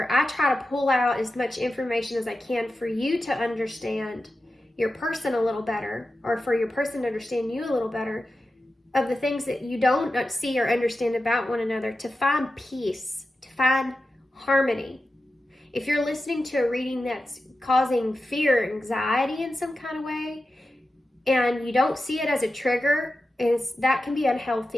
I try to pull out as much information as I can for you to understand your person a little better, or for your person to understand you a little better, of the things that you don't see or understand about one another, to find peace, to find harmony. If you're listening to a reading that's causing fear or anxiety in some kind of way, and you don't see it as a trigger, that can be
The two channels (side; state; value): both; normal; correlation 0.92